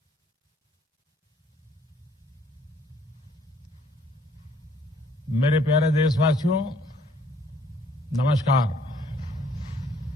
मेरे प्यारे देशवासियों, नमस्कार।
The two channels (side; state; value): both; normal; correlation 0.63